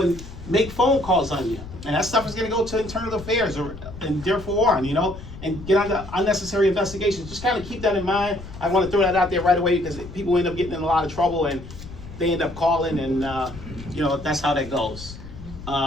make phone calls on you. And that stuff is going to go to internal affairs and therefore on, and get on unnecessary investigations. Just kind of keep that in mind. I want to throw that out there right away because people end up getting in a lot of trouble and they end up calling, and that's how that goes.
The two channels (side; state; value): left; noise; rumble, 14 dB below the sound